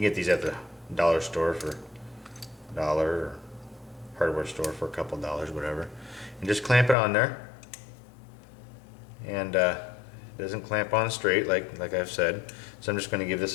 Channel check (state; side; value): drops out; right; at 7.0 s